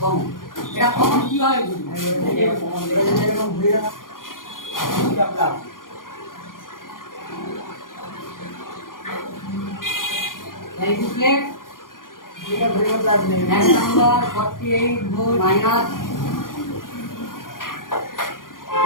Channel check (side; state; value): right; late; 0.90 ms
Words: কমন এটা কমন কিভাবে বুঝবো? এরকম ঘুরে এই বুকলেট এক নাম্বার 48 ভোল্ট মাইনাস,